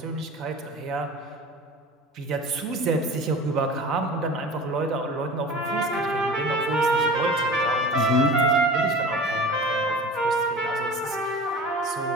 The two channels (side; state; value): both; normal; correlation 0.37